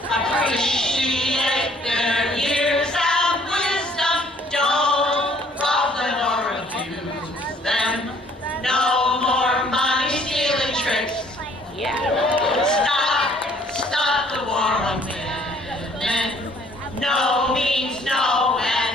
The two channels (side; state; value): both; normal; correlation 0.60